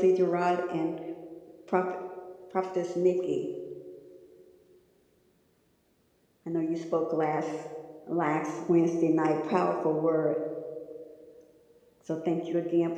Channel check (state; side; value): identical; both; correlation 1.00